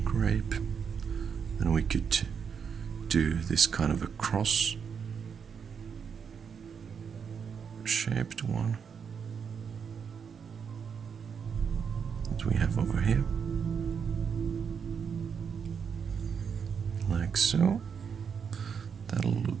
Then we could do this kind of a cross shaped one that we have over here, like so. That'll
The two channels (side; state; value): left; quieter; 6.7 dB